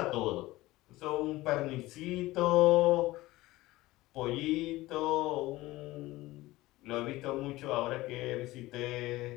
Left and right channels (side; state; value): right; quieter; 18.4 dB